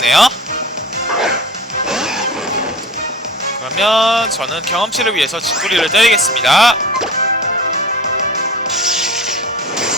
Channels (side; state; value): both; normal; correlation 0.38